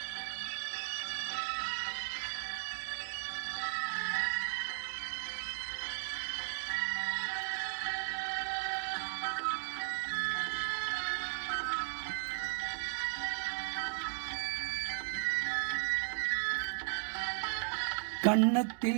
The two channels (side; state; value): left; silent; digital silence